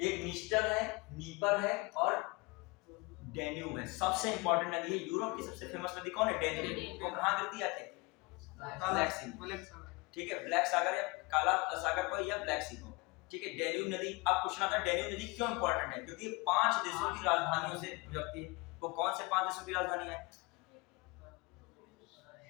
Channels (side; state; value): right; quieter; 26.0 dB